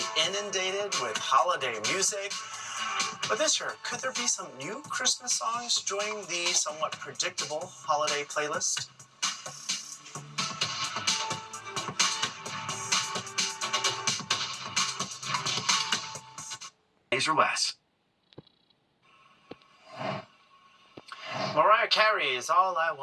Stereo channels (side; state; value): both; identical; correlation 1.00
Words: inundated with holiday music. But this year, could there be some new Christmas songs joining the somewhat predictable holiday playlist? Days or less. Mariah Carey's All I